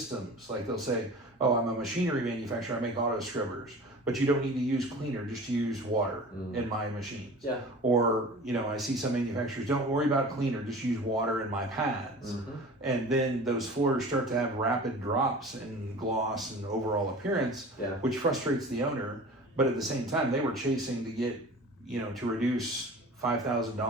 Like they'll say, oh, I'm a machinery manufacturer, I make auto scrubbers, but you don't need to use cleaner, just use water in my machines. Yeah. Or, you know, I see some manufacturers, don't worry about cleaner, just use water in my pads. And then those floors start to have rapid drops in gloss and overall appearance, which frustrates the owner. But at the same time, they were chasing to get, you know, to reduce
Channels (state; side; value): normal; both; correlation 0.39